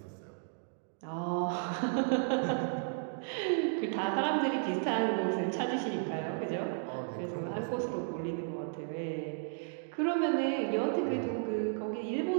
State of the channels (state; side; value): silent; left; digital silence